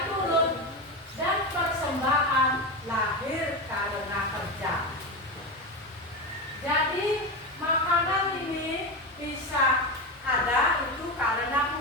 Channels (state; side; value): normal; both; correlation 0.17